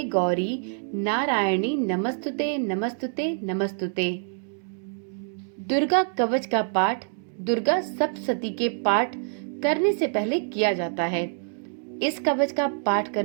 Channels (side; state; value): left; silent; digital silence